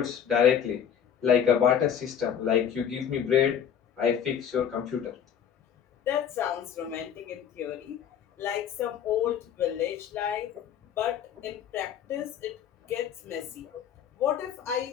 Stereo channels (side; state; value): right; quieter; 8.7 dB